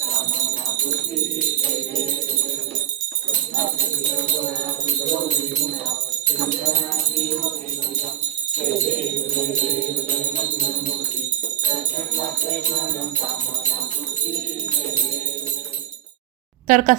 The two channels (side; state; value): left; quieter; 11.9 dB